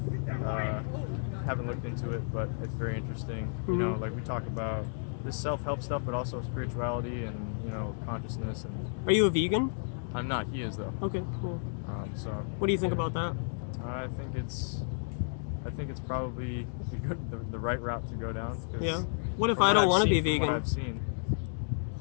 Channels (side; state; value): right; silent; digital silence